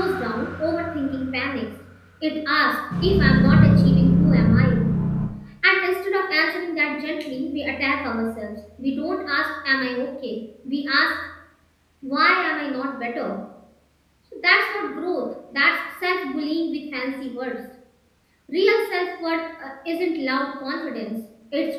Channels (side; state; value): both; identical; correlation 1.00